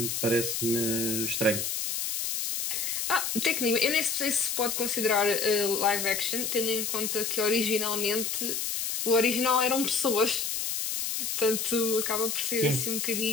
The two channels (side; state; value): left; noise; hiss, 1 dB below the sound